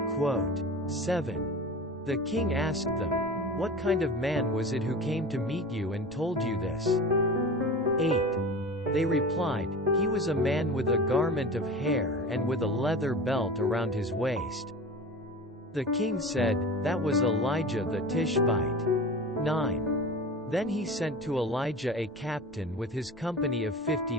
The king asked them, "What kind of man was it who came to meet you and told you this?" 8. They replied, "He was a man with a garment of hair and with a leather belt around his waist." The king said, "That was Elijah the Tishbite." 9. Then he sent to Elijah a captain with his company of 50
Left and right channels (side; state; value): both; normal; correlation 0.34